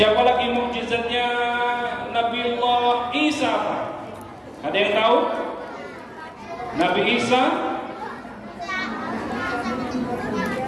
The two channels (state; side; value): identical; both; correlation 1.00